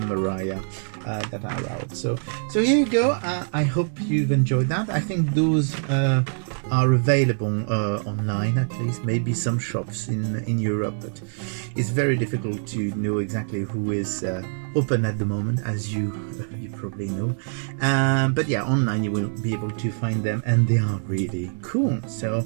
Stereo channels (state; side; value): silent; left; digital silence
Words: Mariah that are out. So here you go. I hope you've enjoyed that. I think those are available online, at least, maybe some shops in Europe, but it's very difficult to know exactly who is open at the moment, as you probably know. But yeah, online you will be able to find them, and they are really cool. So,